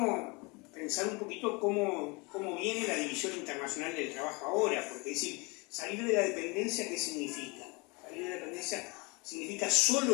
pensar un poquito cómo viene la división internacional del trabajo ahora, porque es decir, salir de la dependencia, ¿qué significa? Salir de la dependencia significa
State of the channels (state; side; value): quieter; right; 27.9 dB